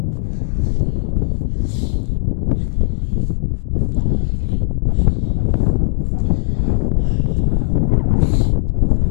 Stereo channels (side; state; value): right; silent; digital silence